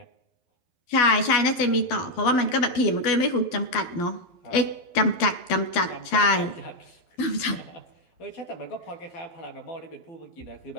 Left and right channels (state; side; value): late; right; 12 ms